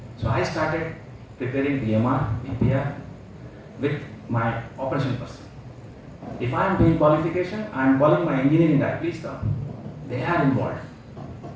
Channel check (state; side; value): identical; both; correlation 1.00